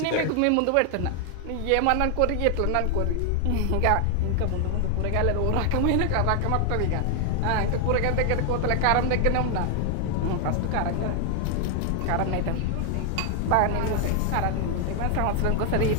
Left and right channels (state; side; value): different; both; correlation 0.00